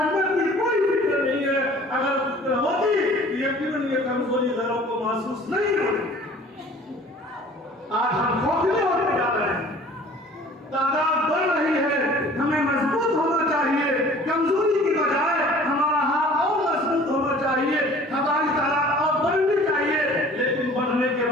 کی کوئی فکر نہیں ہے. اگر فکر ہوتی یقیناً یہ کمزوری غیروں کو محسوس نہیں ہوتی. آج ہم کھوکھلے ہوتے جا رہے ہیں, تعداد بڑھ رہی ہے. ہمیں مضبوط ہونا چاہیے, کمزوری کی بجائے ہمارا ہاتھ اور مضبوط ہونا چاہیے, ہماری تعداد اور بڑھنی چاہیے. لیکن بڑھنے کے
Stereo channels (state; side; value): normal; both; correlation 0.49